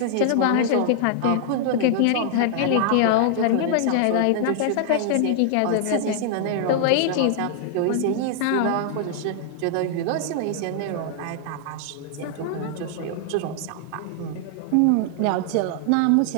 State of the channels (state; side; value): different; both; correlation -0.01